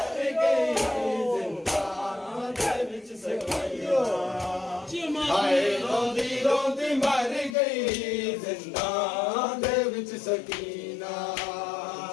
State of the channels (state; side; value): drops out; right; at 7.6 s